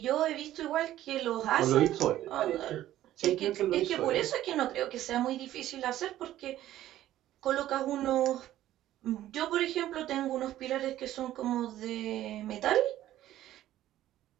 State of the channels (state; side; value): quieter; left; 13.5 dB